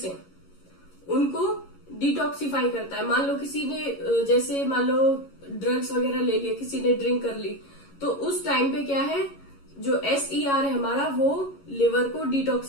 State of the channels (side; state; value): right; late; 11 ms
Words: है उनको डिटॉक्सिफाई करता है। मान लो किसी ने, जैसे मान लो ड्रग्स वगैरह ले लिया, किसी ने ड्रिंक कर ली, तो उस टाइम पे क्या है, जो SER है हमारा वो लिवर को